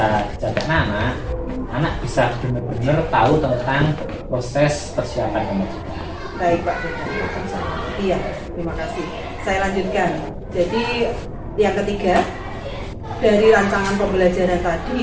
dijaga anak bisa benar-benar tahu tentang proses persiapan kemerdekaan. Baik Pak Dadang, iya, terima kasih. Saya lanjutkan. Jadi yang ketiga, dari rancangan pembelajaran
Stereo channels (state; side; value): identical; both; correlation 1.00